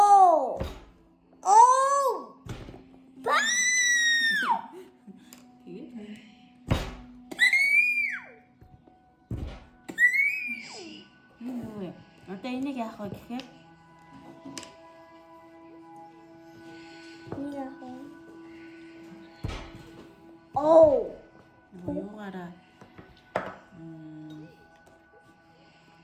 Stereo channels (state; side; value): identical; both; correlation 1.00